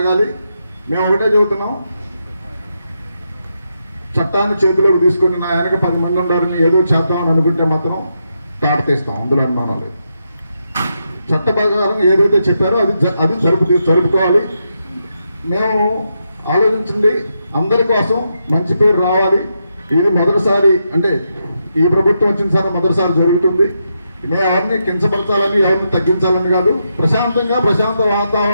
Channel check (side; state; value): both; inverted; correlation -0.83